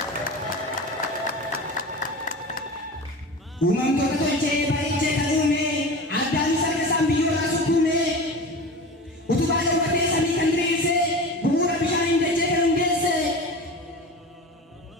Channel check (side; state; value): both; normal; correlation 0.32